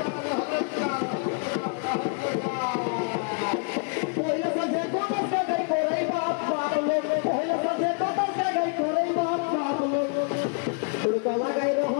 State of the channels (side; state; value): right; quieter; 39.5 dB